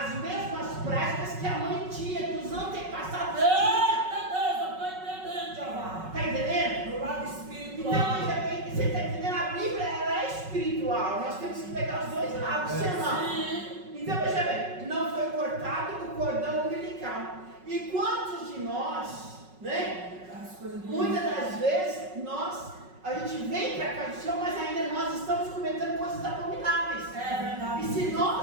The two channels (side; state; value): left; late; 5.4 ms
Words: mesmas práticas que a mãe tinha, que os antepassados tinham. Tá entendendo? Do lado espiritual. Então, veja bem, você tá entendendo? A Bíblia, ela é espiritual, nós temos que pegar os dois lados, senão. Então, veja bem, não foi cortado o cordão umbilical. E quantos de nós, né? Muitas das vezes, a gente vem para cá do Senhor, mas ainda nós estamos cometendo coisas abomináveis. É verdade. E se